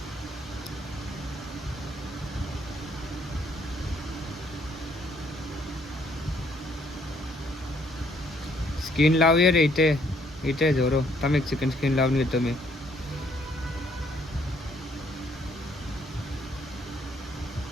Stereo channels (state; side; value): normal; both; correlation 0.67